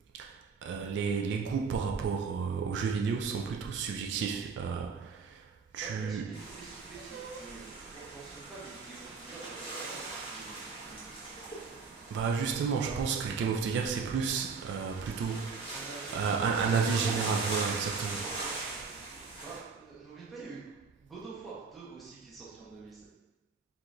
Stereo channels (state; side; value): quieter; left; 5.2 dB